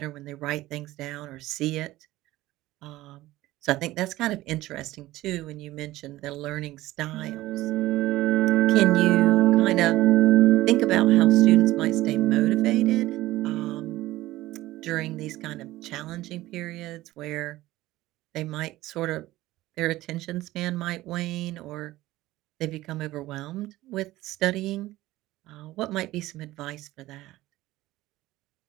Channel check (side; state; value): left; quieter; 16.9 dB